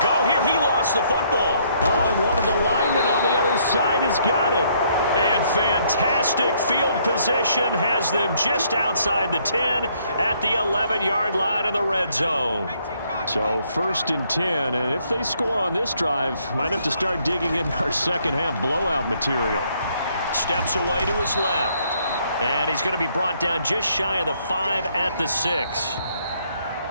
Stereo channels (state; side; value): inverted; both; correlation -0.68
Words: here. He lost the football. Oh, and one of the linemen on the other side has got it. And fantastic field position has them just outside the 10 at the 11-yard line in the red zone. So 1st and 10, and if they score on this drive, might have to start digging in our second half blowout material. Steps away to his left. And he's going to be brought down just shy of the 5 at the 6.